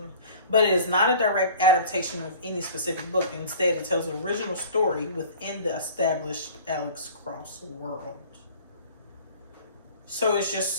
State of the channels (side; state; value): both; inverted; correlation -0.44